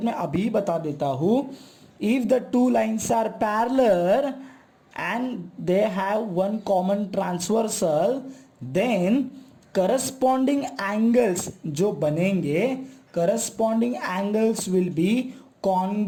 मैं अभी बता देता हूं. If the two lines are parallel and they have one common transversal, then corresponding angles जो बनेंगे, corresponding angles will be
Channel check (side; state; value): both; identical; correlation 1.00